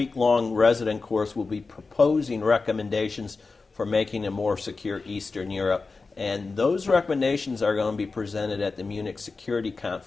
resident course will be proposing recommendations for making a more secure Eastern Europe, and those recommendations are going to be presented at the Munich Security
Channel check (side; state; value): right; quieter; 4.1 dB